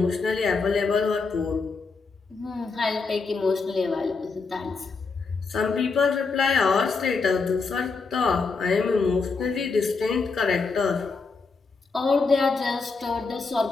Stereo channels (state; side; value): quieter; right; 4.4 dB